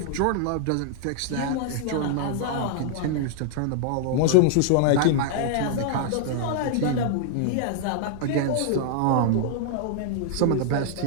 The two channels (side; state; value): both; different; correlation -0.01